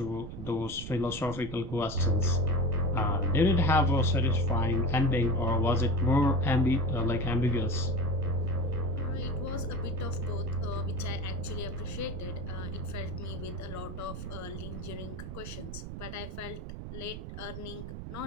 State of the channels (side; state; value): right; noise; rumble, 9 dB below the sound